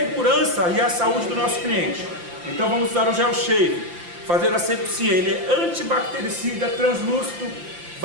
e a saúde do nosso cliente. Então vamos usar o gel shave, fazer a asepsia. Ele é antibactericida, translúcido,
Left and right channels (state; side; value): late; left; 5.8 ms